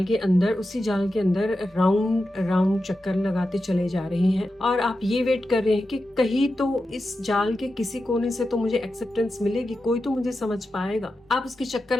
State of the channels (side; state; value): both; normal; correlation 0.90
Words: के अंदर, उसी जाल के अंदर राउंड राउंड चक्कर लगाते चले जा रहे हैं और आप ये वेट कर रहे हैं कि कहीं तो इस जाल के किसी कोने से तो मुझे एक्सेप्टेंस मिलेगी, कोई तो मुझे समझ पाएगा। आप उसके चक्कर